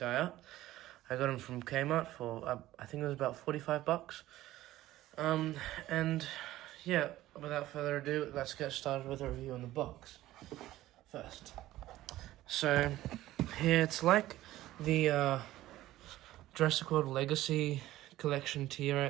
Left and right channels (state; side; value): quieter; left; 15.4 dB